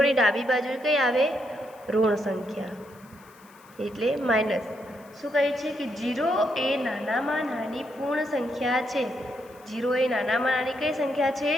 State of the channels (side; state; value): left; noise; hiss, 28 dB below the sound